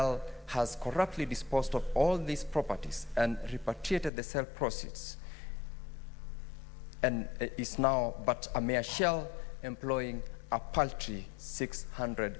has corruptly disposed of all these properties and repatriated the sale proceeds, and is now but a mere shell, employing a paltry 600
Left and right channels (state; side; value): drops out; right; at 4.1 s